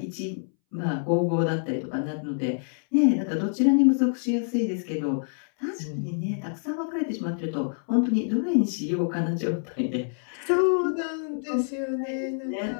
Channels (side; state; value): right; silent; 60 dB below the other